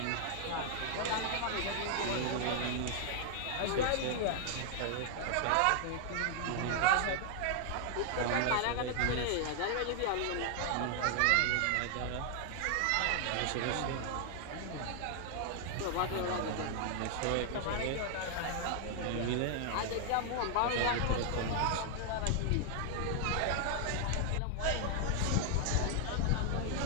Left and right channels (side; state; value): both; different; correlation 0.00